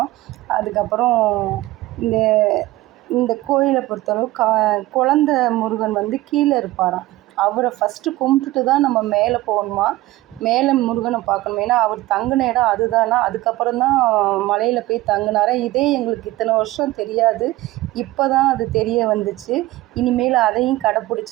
அதுக்கப்புறம் இந்த இந்த கோயிலை பொறுத்தளவு குழந்த முருகன் கீழே இருப்பாராம். அவரை ஃபஸ்ட்டு கும்பிட்டுட்டு தான் நம்ம மேலே போகணுமா, மேலே முருகனை பார்க்கணும். ஏன்னா அவர் தங்கின இடம் அதுதானா. அதுக்கப்புறம் தான் மலையில் போய் தங்கினாரா. இதே எங்களுக்கு இத்தனை வருஷம் தெரியாது. இப்போ தான் அது தெரிய வந்துச்சு. இனிமேல் அதையும்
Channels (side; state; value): left; quieter; 17.8 dB